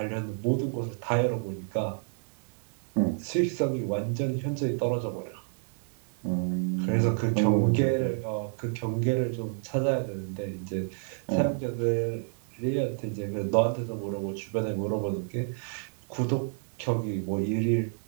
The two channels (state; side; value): silent; left; digital silence